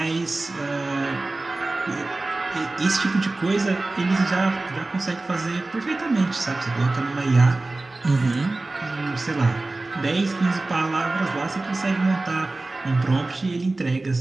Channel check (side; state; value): left; quieter; 3.1 dB